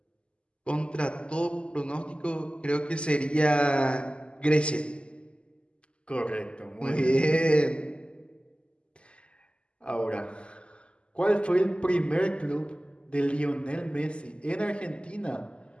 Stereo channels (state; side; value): late; right; 0.053 ms